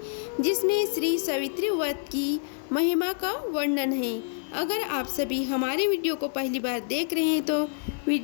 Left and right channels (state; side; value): silent; right; digital silence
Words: जिसमें श्री सावित्री व्रत की महिमा का वर्णन है। अगर आप सभी हमारे वीडियो को पहली बार देख रहे हैं तो